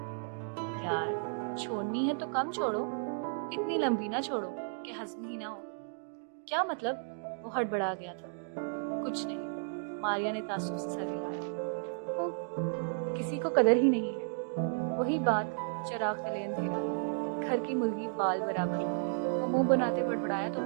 यार, छोड़नी है तो कम छोड़ो, इतनी लंबी ना छोड़ो कि हजम ही ना हो। क्या मतलब? वो हड़बड़ा गया था। कुछ नहीं, मारिया ने तासुब से सर हिलाया। किसी को कदर ही नहीं है। वही बात, चिराग तले अंधेरा, घर की मुर्गी बाल बराबर। वो मुंह बनाते बड़बड़ाया तो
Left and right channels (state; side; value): silent; left; digital silence